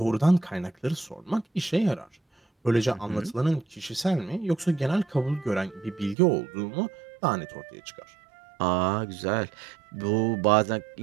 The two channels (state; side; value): drops out; left; at 6.2 s